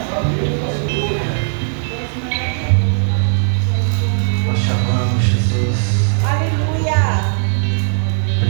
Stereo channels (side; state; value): left; silent; digital silence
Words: Nós te amamos, Jesus. Aleluia.